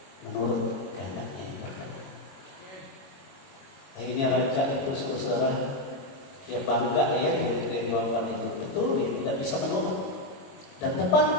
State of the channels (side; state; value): right; late; 22 ms